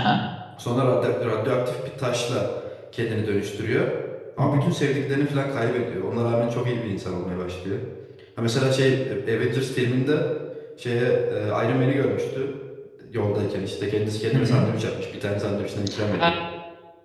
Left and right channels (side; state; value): both; identical; correlation 1.00